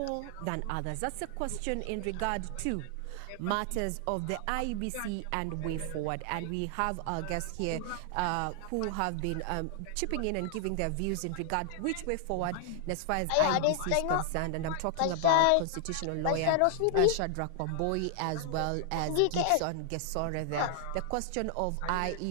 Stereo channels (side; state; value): both; different; correlation -0.01